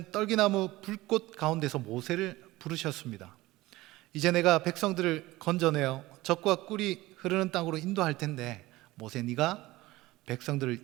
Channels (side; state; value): left; quieter; 18.7 dB